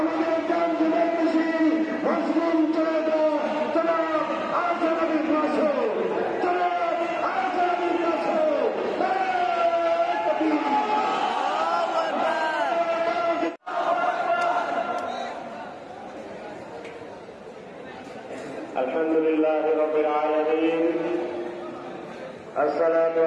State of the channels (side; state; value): both; identical; correlation 1.00